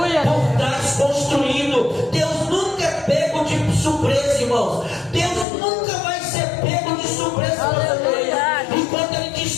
por trás construindo. Deus nunca é pego de surpresa, irmãos. Deus nunca vai ser pego de surpresa, aleluia. Enquanto ele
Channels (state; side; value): drops out; right; at 5.5 s